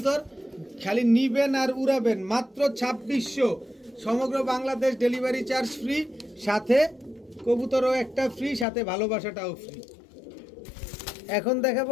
খালি নিবেন আর উড়াবেন। মাত্র 2600, সমগ্র বাংলাদেশ ডেলিভারি চার্জ ফ্রি, সাথে কবুতরও একটা ফ্রি, সাথে ভালোবাসাটাও ফ্রি। এখন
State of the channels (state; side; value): drops out; right; at 8.7 s